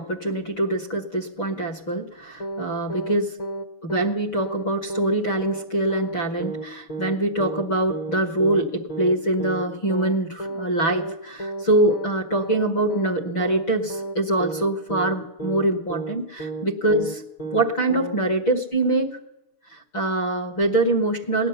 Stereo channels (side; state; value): right; late; 6.1 ms